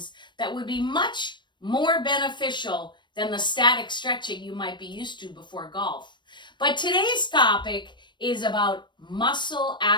that would be much more beneficial than the static stretching you might be used to before golf. But today's topic is about muscle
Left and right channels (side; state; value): right; late; 0.22 ms